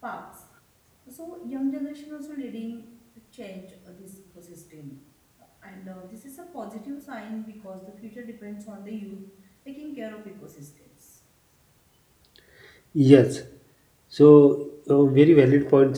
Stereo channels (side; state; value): both; identical; correlation 1.00